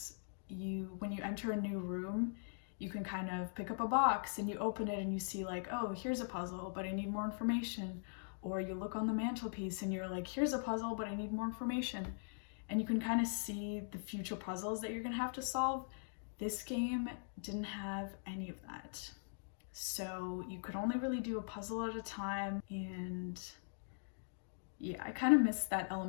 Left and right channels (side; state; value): right; silent; digital silence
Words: when you enter a new room, you can kind of pick up a box and you open it and you see like, oh, here's a puzzle, but I need more information. Or you look on the mantelpiece and you're like, here's a puzzle, but I need more information. And you can kind of see the future puzzles that you're gonna have to solve. This game didn't have any of that. So you could only really do a puzzle at a time, and yeah, I kind of missed that